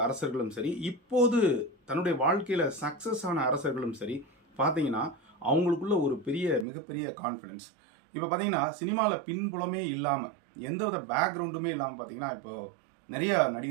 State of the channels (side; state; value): left; drops out; at 6.7 s